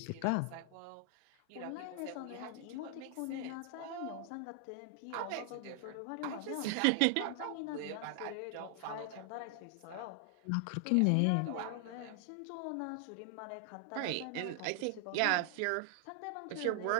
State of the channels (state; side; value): different; both; correlation 0.00